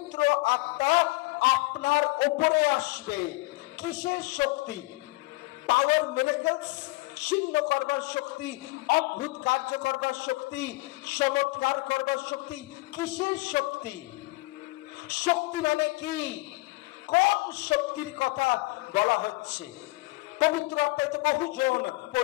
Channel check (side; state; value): right; quieter; 23.2 dB